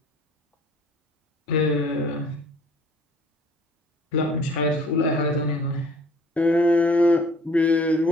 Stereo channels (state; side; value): normal; both; correlation 0.53